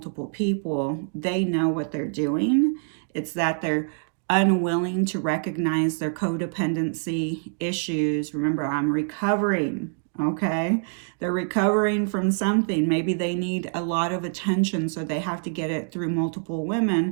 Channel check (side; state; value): left; silent; digital silence